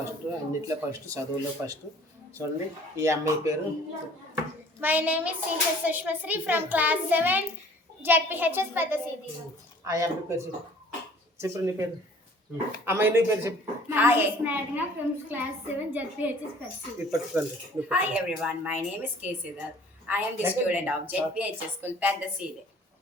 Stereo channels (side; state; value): both; normal; correlation 0.52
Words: అన్నిట్లో ఫస్ట్, చదువులో ఫస్ట్. చూడండి ఈ అమ్మాయి పేరు. My name is CH Sushmasri from class 7 ZPHS పెద్ద సీది. ఆ అమ్మాయి పేరు చెప్పు. నీ పేరు అమ్మాయి, నీ పేరు చెప్పు. Hi, Snagna from class 7 JPHS Percy. Hi everyone, my name is K. Siddharth. I am the student of JPHS School Pandaside.